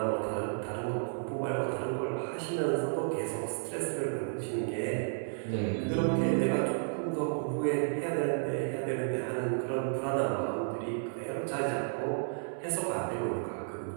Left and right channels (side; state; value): left; silent; 56 dB below the other